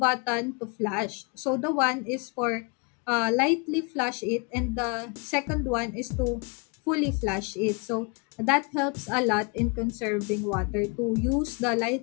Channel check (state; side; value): quieter; right; 32.7 dB